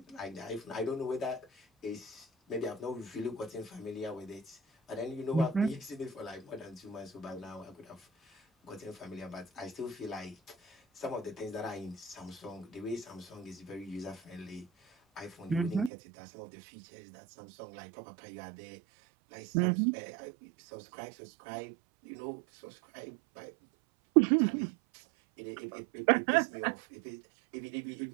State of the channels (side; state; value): left; drops out; at 15.9 s